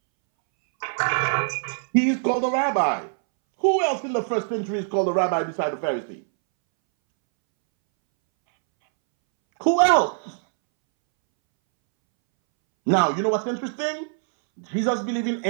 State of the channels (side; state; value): left; silent; 63 dB below the other